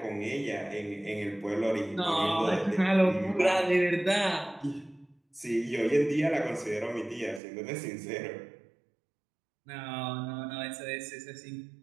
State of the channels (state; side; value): drops out; left; at 7.4 s